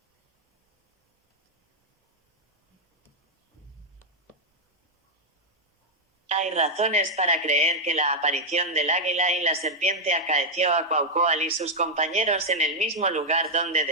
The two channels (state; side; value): normal; both; correlation -0.02